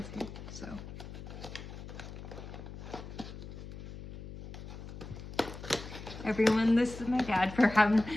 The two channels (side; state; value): left; noise; hum, 11 dB below the sound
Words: here, so. Everyone, this is my dad for having,